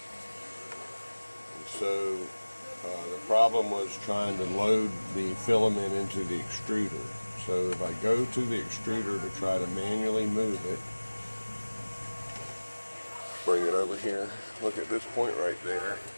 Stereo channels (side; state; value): both; inverted; correlation -1.00